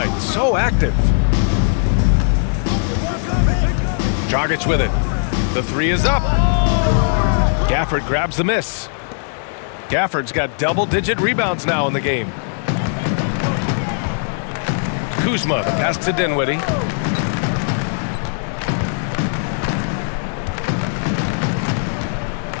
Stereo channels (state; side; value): silent; right; digital silence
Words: So active. Dragic with it. The three is up. Gafford grabs the miss. Gafford's got double-digit rebounds now in the game. Kuzma, the pass to Dinwiddie.